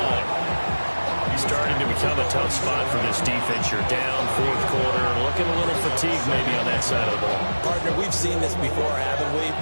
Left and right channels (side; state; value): both; inverted; correlation -1.00